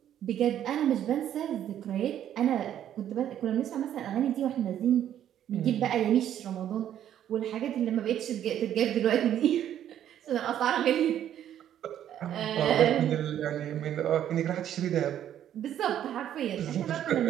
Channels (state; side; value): quieter; left; 10.7 dB